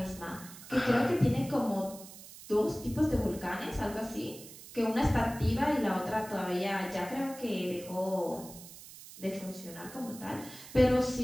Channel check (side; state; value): right; noise; hiss, 16 dB below the sound